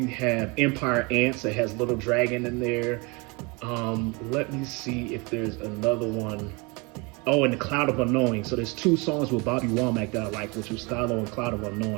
have Empire Ants that has Little Dragon in there. Let me see if there's another one. Oh, and The Cloud of Unknowing. So there's two songs with Bobby Womack that I like, which was Stylo and Cloud of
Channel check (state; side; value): quieter; left; 28.4 dB